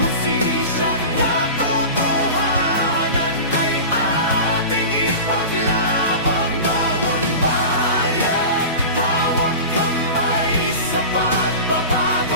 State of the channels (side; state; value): both; inverted; correlation -0.31